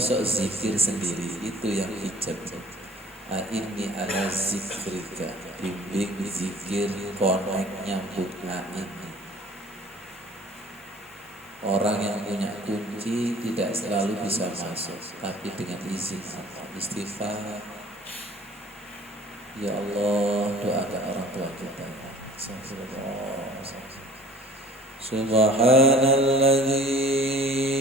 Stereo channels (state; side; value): normal; both; correlation 0.48